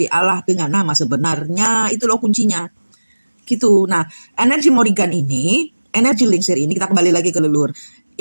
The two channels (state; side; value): inverted; both; correlation -1.00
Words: Allah dengan nama sebenarnya, itu loh kuncinya. Gitu. Nah, energi Morrigan ini, energi Lingsir ini, kita kembali lagi ke leluhur.